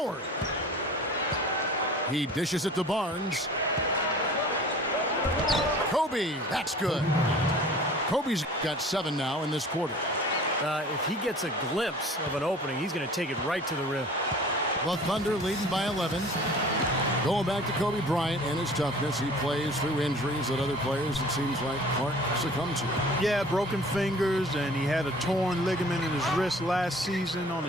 He dishes it to Barnes. Kobe, that's good. Kobe's got 7 now in this quarter. If he gets a glimpse of an opening, he's going to take it right to the rim. The Thunder leading by 11. Going back to Kobe Bryant and his toughness, he plays through injuries that other players, it seems like, Clark succumb to. Yeah, broken fingers, and he had a torn ligament in his wrist last season on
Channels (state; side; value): normal; both; correlation 0.46